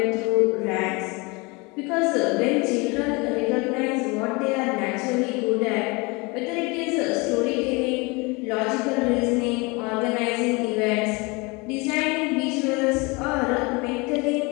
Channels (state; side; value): quieter; right; 27.1 dB